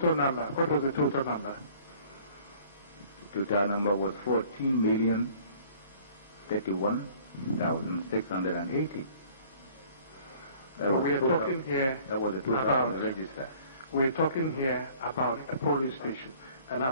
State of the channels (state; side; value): inverted; both; correlation -0.53